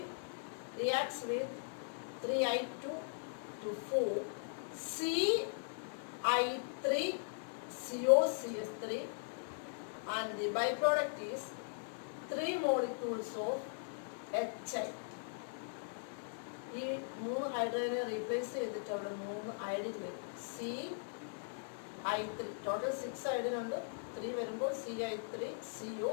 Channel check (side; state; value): right; silent; digital silence